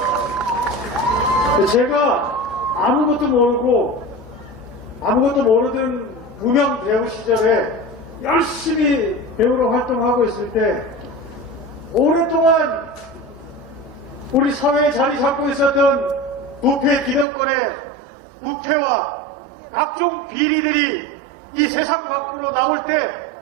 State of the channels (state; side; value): drops out; left; at 17.2 s